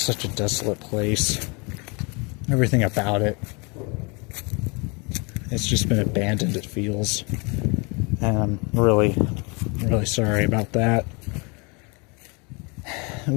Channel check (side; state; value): right; quieter; 30.6 dB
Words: such a desolate place. Everything about it. It's just been abandoned, it feels. And I'm really, really sorry about that.